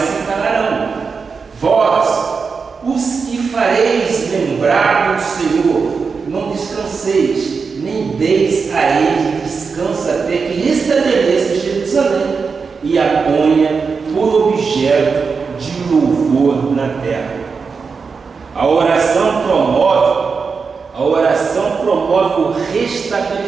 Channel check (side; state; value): left; quieter; 5.2 dB